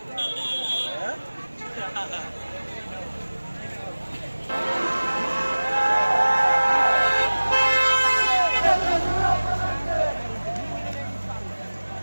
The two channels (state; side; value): inverted; both; correlation -1.00